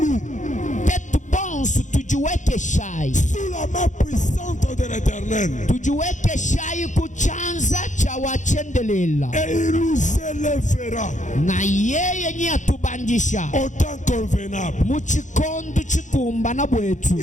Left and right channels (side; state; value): right; late; 0.36 ms